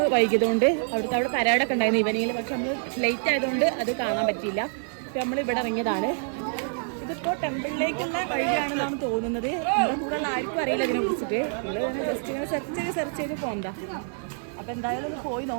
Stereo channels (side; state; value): left; silent; 60 dB below the other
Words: വൈകിയതുകൊണ്ട്. അവിടെ പരേഡൊക്കെ ഉണ്ടായിരുന്നു ഈവനിങ്ങിൽ, പക്ഷെ നമ്മൾ ലേറ്റ് ആയതുകൊണ്ട് അത് കാണാൻ പറ്റിയില്ല. അപ്പോൾ നമ്മൾ ഇവിടെ ഇറങ്ങിയതാണ്. ഇതിപ്പോൾ ടെമ്പിളിലേക്കുള്ള വഴിയാണെന്നാണ് തോന്നുന്നത്. നമ്മുടെ കൂടെ ഉള്ള ആർക്കും അറിയില്ല ഇതിനെ കുറിച്ചിട്ട്. നമ്മൾ ഇങ്ങനെ ജസ്റ്റ് ഇങ്ങനെ സെർച്ച് ചെയ്ത് പോകണ്ട. അപ്പോൾ എന്തായാലും ഒന്ന് പോയി